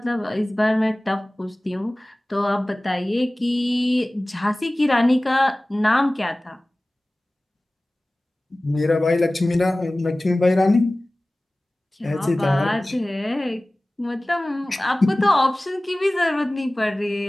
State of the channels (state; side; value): normal; both; correlation 0.98